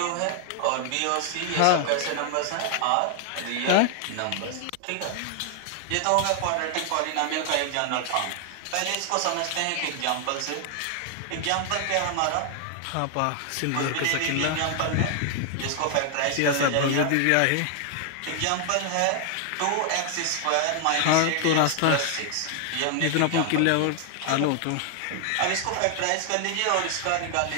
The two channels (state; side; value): different; both; correlation 0.00